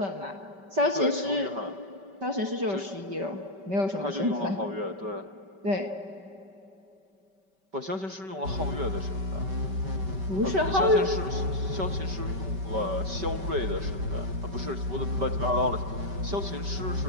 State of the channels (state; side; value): late; left; 5.2 ms